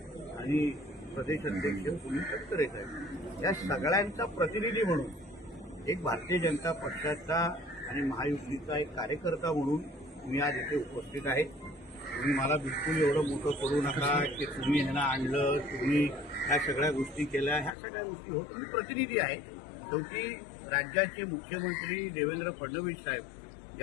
आणि प्रदेश अध्यक्ष सुनील तटकरे साहेब, या सगळ्यांचा प्रतिनिधी म्हणून एक भारतीय जनता पक्षाचा आणि महायुतीचा एक कार्यकर्ता म्हणून मी आज इथे उपस्थित आहे. तुम्ही मला बिलकुल एवढं मोठं करू नका की तुम्ही ह्यांना आणलं, तुम्ही ह्या सगळ्या गोष्टी केल्या, ह्या सगळ्या गोष्टी होत. मी प्रतिनिधी आहे. शेवटी राज्याचे मुख्यमंत्री देवेंद्र फडणवीस साहेब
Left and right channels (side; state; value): right; drops out; at 17.8 s